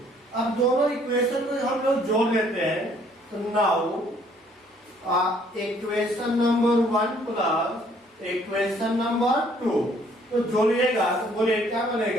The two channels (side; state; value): both; normal; correlation 0.62